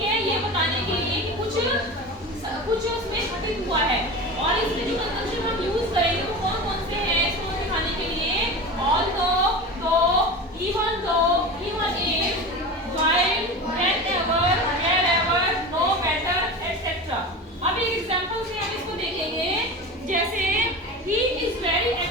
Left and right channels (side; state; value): both; normal; correlation 0.29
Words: है। ये बताने के लिए कि कुछ उसमें घटित हुआ है। और इसमें जो कंजंक्शन हम यूज करेंगे वो कौन कौन से हैं इसको दिखाने के लिए, although, even though, even if, while, whenever, wherever, no matter etcetera. अब एक एग्जांपल से हम इसको देखेंगे, जैसे he is very